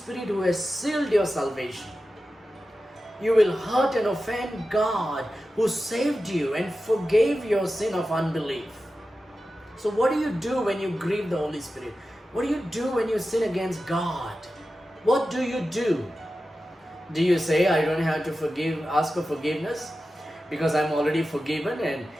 who has sealed your salvation. You will hurt and offend God who saved you and forgave your sin of unbelief. So what do you do when you grieve the Holy Spirit? What do you do when you sin against God? What do you do? Do you say, I don't have to ask for forgiveness because I'm already forgiven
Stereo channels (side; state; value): both; normal; correlation 0.93